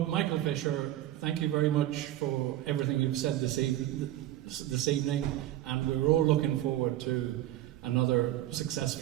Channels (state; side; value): quieter; left; 13.9 dB